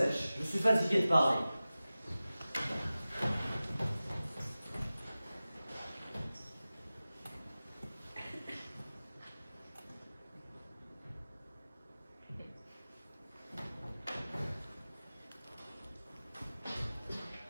je suis fatigué de parler.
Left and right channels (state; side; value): inverted; both; correlation -0.97